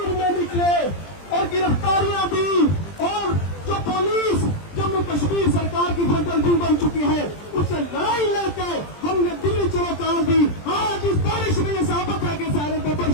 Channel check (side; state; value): right; late; 20 ms